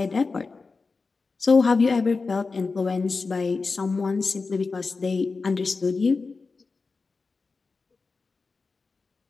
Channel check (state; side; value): quieter; right; 4.2 dB